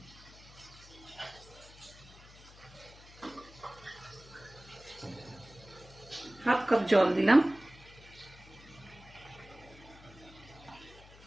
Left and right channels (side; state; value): left; noise; hum, 21 dB below the sound